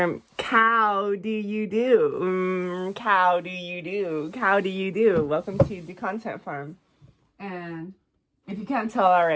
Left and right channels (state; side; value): identical; both; correlation 1.00